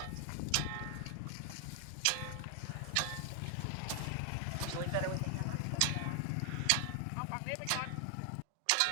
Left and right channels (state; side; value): different; both; correlation 0.00